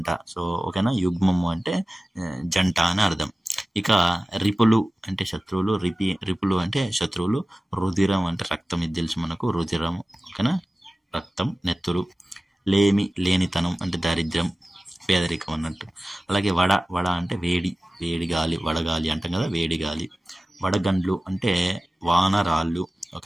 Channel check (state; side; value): normal; both; correlation 0.96